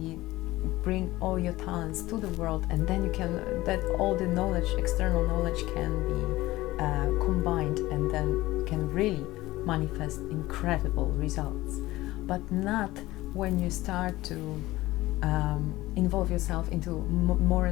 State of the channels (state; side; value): quieter; right; 18.0 dB